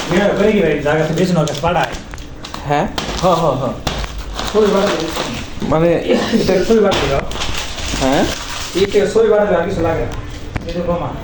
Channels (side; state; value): both; identical; correlation 1.00